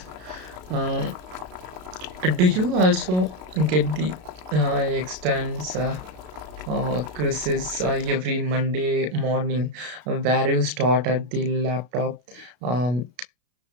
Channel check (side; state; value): left; late; 33 ms